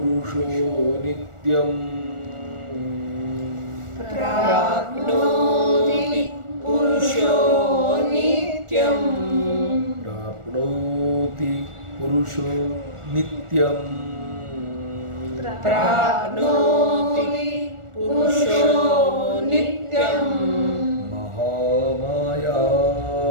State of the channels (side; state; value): left; late; 1.4 ms